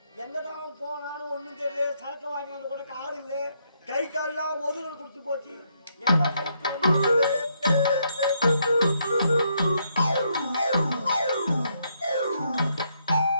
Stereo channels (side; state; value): both; inverted; correlation -0.75